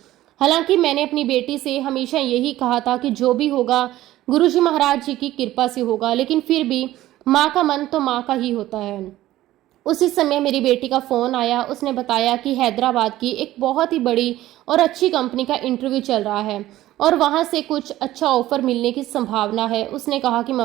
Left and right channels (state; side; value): quieter; left; 15.0 dB